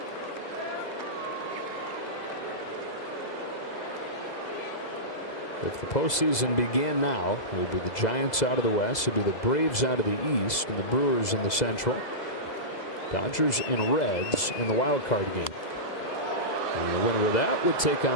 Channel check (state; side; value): late; right; 2.0 ms